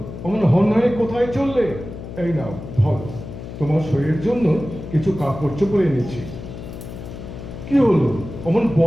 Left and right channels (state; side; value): noise; left; hum, 11 dB below the sound